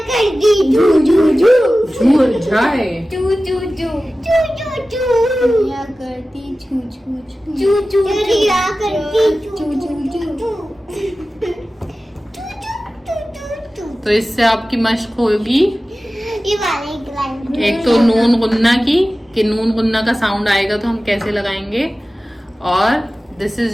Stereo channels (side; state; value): both; normal; correlation 0.96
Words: तो इससे आपकी मश्क होगी ये वाले एक तो नून गुन्ना की, कि नून गुन्ना का साउंड आएगा तो हम कैसे लगाएंगे, और दिस